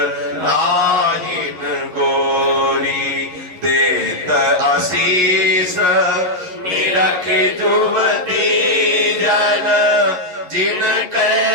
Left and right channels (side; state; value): left; late; 11 ms